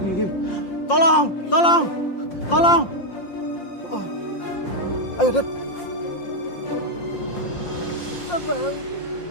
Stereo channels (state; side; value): late; right; 5.7 ms